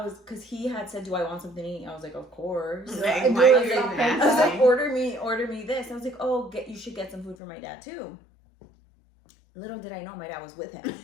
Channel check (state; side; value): drops out; right; at 7.4 s